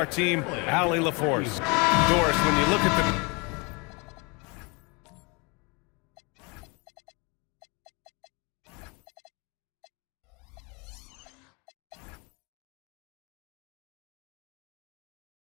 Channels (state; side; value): quieter; right; 29.6 dB